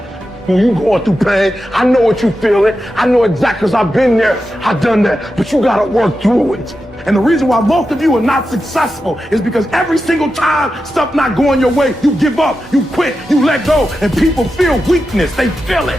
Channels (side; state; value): both; normal; correlation 0.90